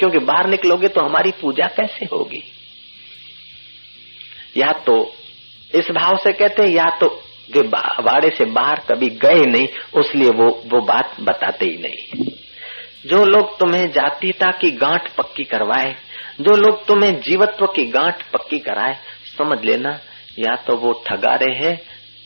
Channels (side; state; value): both; inverted; correlation -1.00